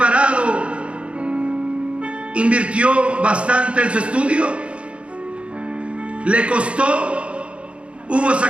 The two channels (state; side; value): late; left; 0.060 ms